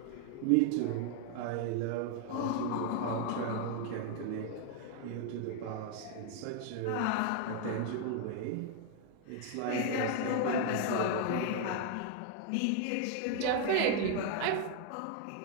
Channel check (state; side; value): different; both; correlation 0.00